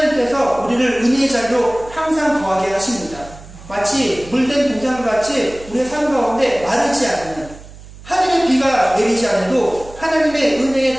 우리를 은혜의 자리로 항상 거하게 하십니다. 마치 물된 동산같이 우리의 삶 가운데 마르지 않는 하늘의 비가 내리지 않아도 하나님의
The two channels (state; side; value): noise; right; hum, 18 dB below the sound